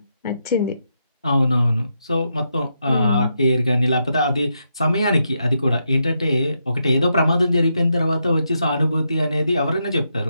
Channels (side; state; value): both; inverted; correlation -0.82